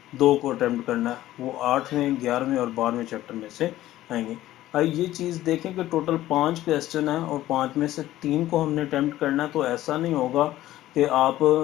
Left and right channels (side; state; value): right; quieter; 14.7 dB